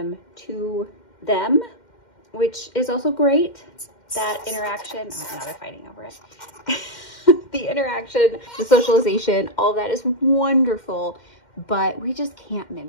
to them, which is also great. That interaction, oh, now they're fighting over it. The interaction, the socialization, all of that is wonderful, but we just can't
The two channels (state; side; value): late; right; 2.1 ms